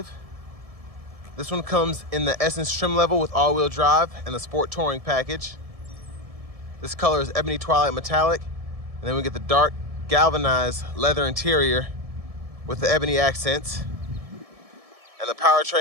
This one comes in the Essence trim level with all-wheel drive and the Sport Touring package. This color is Ebony Twilight Metallic, and then we get the dark galvanized leather interior with the ebony accents. And the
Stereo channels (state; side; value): late; left; 1.7 ms